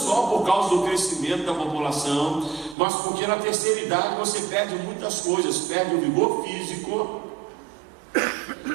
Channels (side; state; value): left; drops out; at 2.8 s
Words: por causa do crescimento da população, mas porque na terceira idade você perde muitas coisas. Perde o vigor físico,